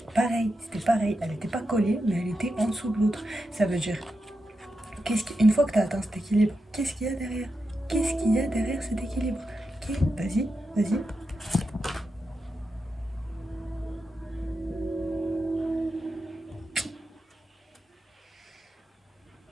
c'était pareil, elle était pas collée mais elle était en dessous de l'autre. Ça veut dire, une fois que t'as atteint cet équilibre, qu'est-ce qu'il y a derrière? Qu'est-ce qu'il y a derrière cet équilibre? Ok, vas-y.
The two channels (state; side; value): normal; both; correlation 0.88